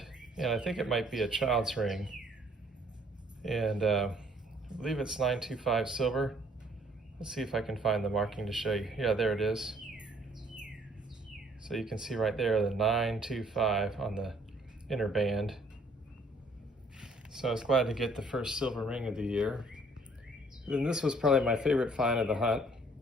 and I think it might be a child's ring. And I believe it's 925 silver. Let's see if I can find the marking to show you. Yeah, there it is. So you can see right there the 925 on the inner band. So I was glad to get the first silver ring of the year. Then this was probably my favorite find of the hunt.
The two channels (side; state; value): both; normal; correlation 0.61